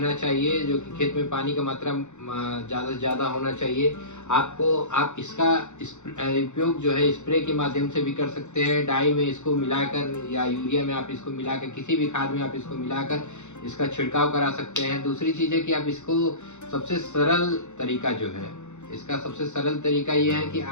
चाहिए, जो कि खेत में पानी का मात्रा ज़्यादा से ज़्यादा होना चाहिए। आप इसका उपयोग जो है स्प्रे के माध्यम से भी कर सकते हैं। डाई में इसको मिलाकर या यूरिया में आप इसको मिलाकर, किसी भी खाद में आप इसको मिलाकर इसका छिड़काव करा सकते हैं। दूसरी चीज़ है कि आप इसको सबसे सरल तरीका जो है, इसका सबसे सरल तरीका ये है कि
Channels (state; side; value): late; right; 0.83 ms